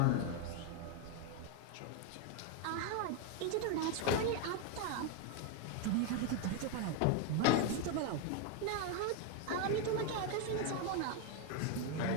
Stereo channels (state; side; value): different; both; correlation 0.01